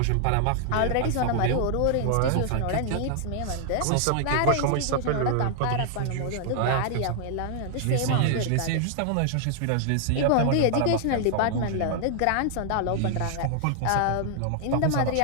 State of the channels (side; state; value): both; different; correlation 0.00